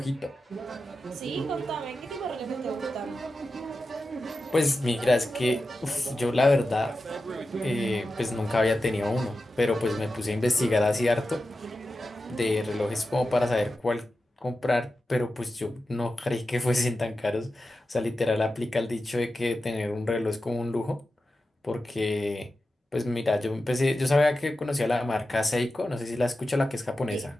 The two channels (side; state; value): both; normal; correlation 0.92